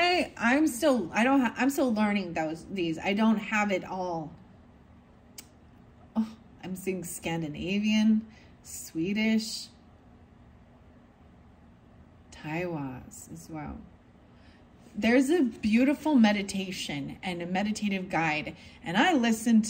I'm still learning these. I don't have it all. Oh, I'm seeing Scandinavian, Swedish, Taiwas as well. There's a beautiful meditation and a meditative guide, and I listened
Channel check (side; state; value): both; identical; correlation 1.00